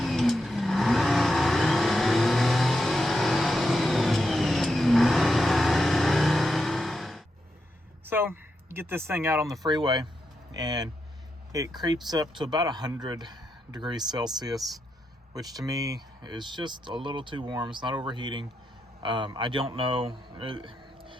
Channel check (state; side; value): normal; both; correlation 0.85